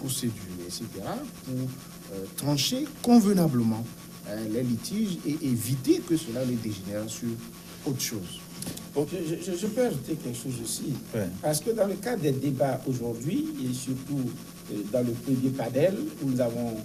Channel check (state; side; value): identical; both; correlation 1.00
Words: etc., pour trancher convenablement les litiges et éviter que cela ne dégénère sur autre chose. Je peux ajouter quelque chose aussi, ouais. Parce que dans le cadre des débats aujourd'hui, et surtout dans le premier panel où nous avons